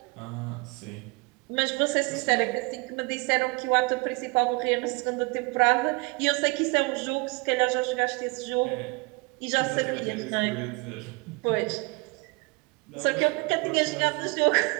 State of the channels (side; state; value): left; quieter; 28.6 dB